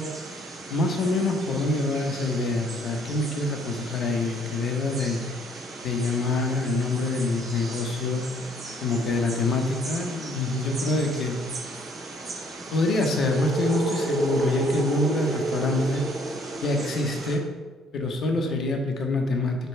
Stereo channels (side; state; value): both; normal; correlation 0.63